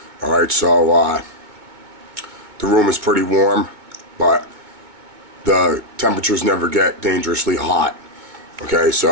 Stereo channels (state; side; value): late; left; 2.2 ms